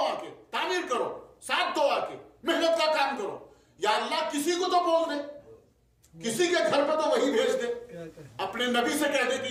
آ کے، تعمیر کرو، ساتھ دو آ کے، محنت کا کام کرو. یا اللہ کسی کو تو بول دے، کسی کے گھر پہ تو وہی بھیج دے، اپنے نبی سے کہہ دے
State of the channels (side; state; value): both; identical; correlation 1.00